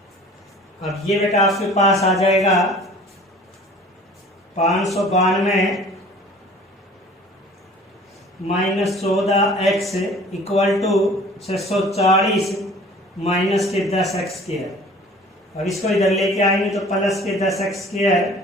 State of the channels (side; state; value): both; normal; correlation 0.47